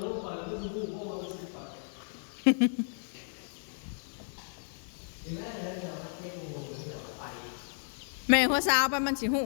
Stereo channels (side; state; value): right; silent; digital silence